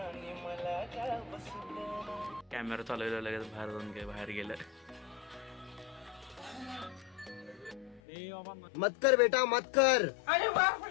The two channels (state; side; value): drops out; right; at 8.0 s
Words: कॅमेरा चालवला, लगेच बाहेर गेलं. मत कर बेटा मत कर. अरे